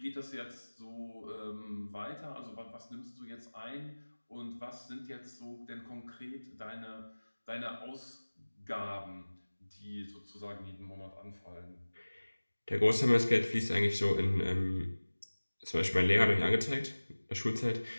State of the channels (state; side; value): inverted; both; correlation -1.00